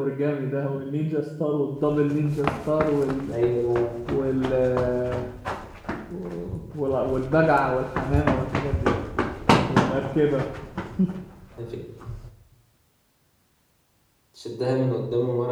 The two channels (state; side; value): identical; both; correlation 1.00